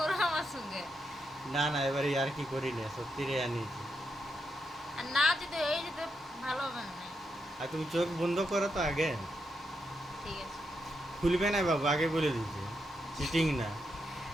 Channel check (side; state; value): both; normal; correlation 0.82